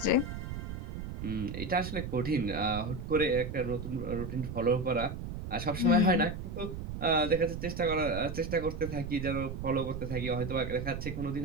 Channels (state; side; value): noise; right; rumble, 6 dB below the sound